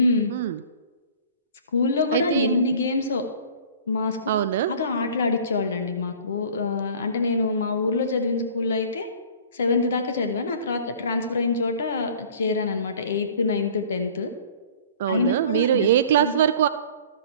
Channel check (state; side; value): inverted; both; correlation -0.47